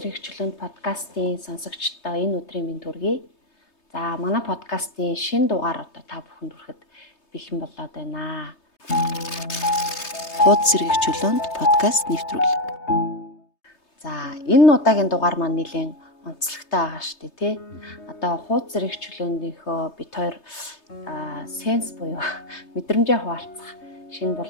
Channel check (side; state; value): right; late; 3.3 ms